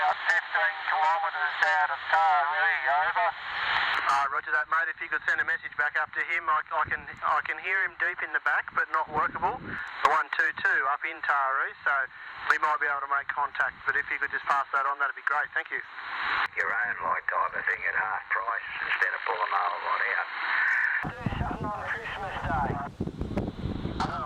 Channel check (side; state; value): both; identical; correlation 1.00